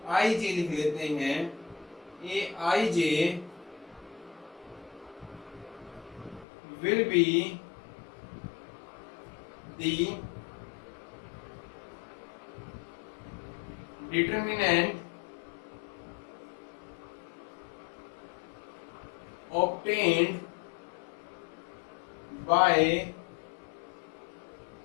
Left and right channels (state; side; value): drops out; right; at 6.5 s